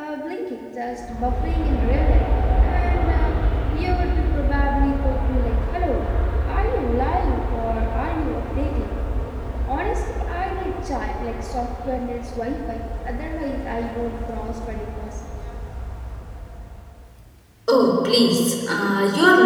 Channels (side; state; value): both; identical; correlation 1.00